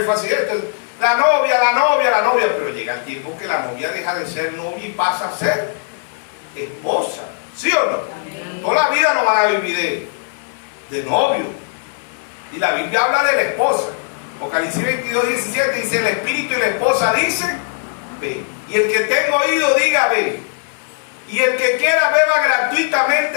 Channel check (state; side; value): silent; right; 57 dB below the other